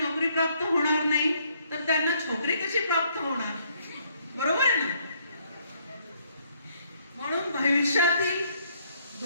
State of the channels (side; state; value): both; inverted; correlation -0.67